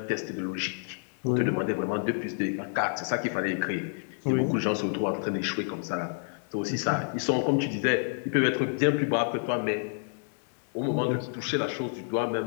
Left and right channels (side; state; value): right; silent; 59 dB below the other